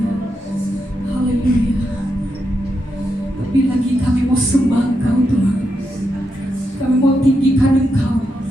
Haleluya. Lebih lagi kami mau sembah Engkau Tuhan. Kami mau tinggikan Engkau.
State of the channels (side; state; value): both; normal; correlation 0.84